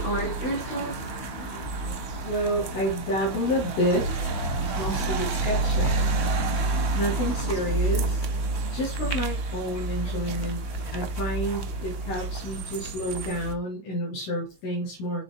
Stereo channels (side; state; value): right; late; 16 ms